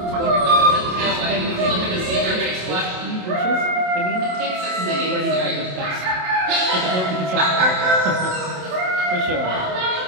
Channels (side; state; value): left; late; 27 ms